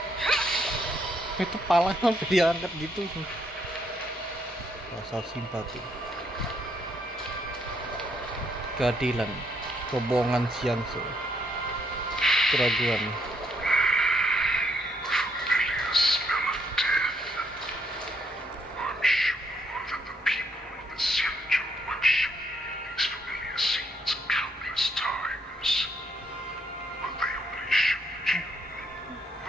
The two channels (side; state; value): both; normal; correlation 0.73